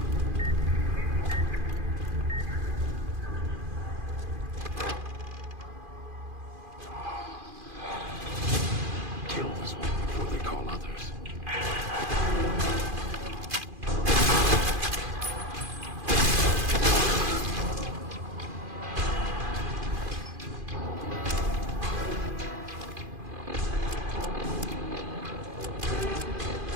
Kill this one before they call others.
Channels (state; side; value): late; left; 2.5 ms